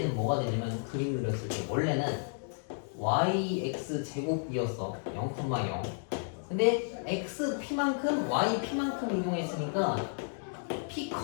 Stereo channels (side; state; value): right; silent; digital silence